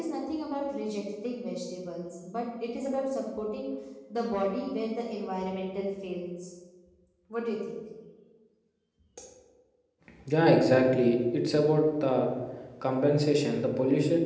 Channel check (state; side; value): identical; both; correlation 1.00